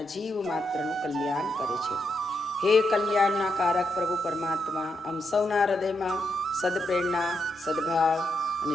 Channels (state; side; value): normal; both; correlation 0.82